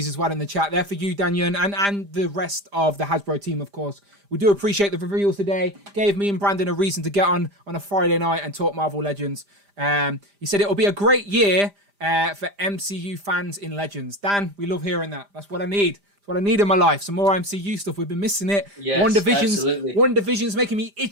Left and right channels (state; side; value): late; left; 5.0 ms